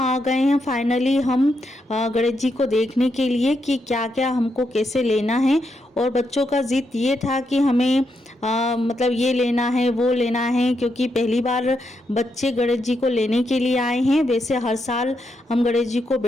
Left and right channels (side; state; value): both; normal; correlation 0.82